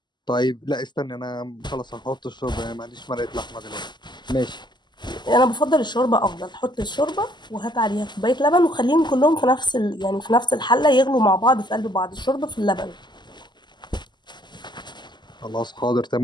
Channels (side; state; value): right; late; 0.21 ms